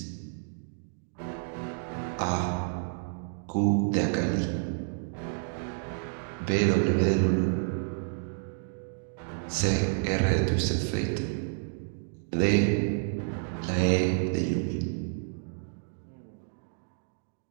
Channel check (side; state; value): left; silent; digital silence